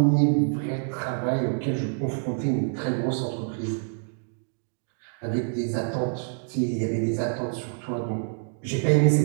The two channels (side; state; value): left; silent; digital silence